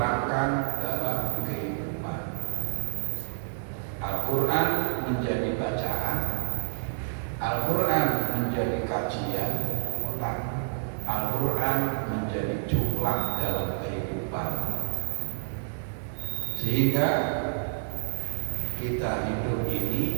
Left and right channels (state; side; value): silent; left; digital silence